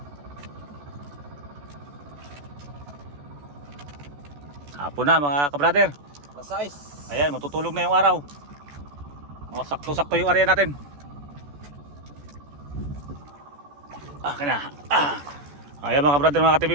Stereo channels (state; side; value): late; left; 14 ms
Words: Hapon na mga kabrader. Lasais. Ayan, matutulog na yung araw. O, sakto-sakto yung area natin. Kana. Ayan mga kabrader, mga ka-TV